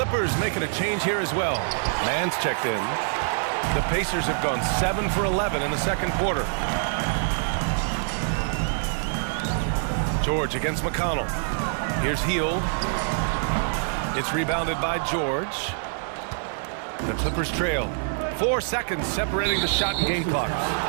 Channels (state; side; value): silent; left; digital silence